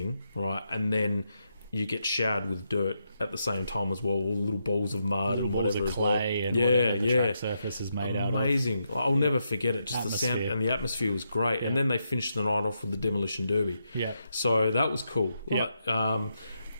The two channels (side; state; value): both; inverted; correlation -0.82